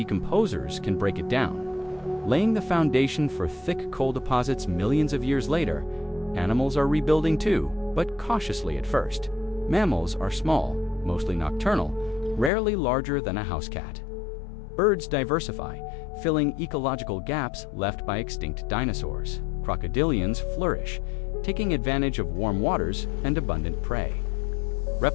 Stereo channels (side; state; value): right; drops out; at 12.5 s